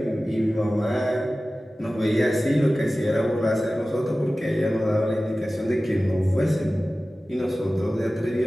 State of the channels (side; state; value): both; normal; correlation 0.96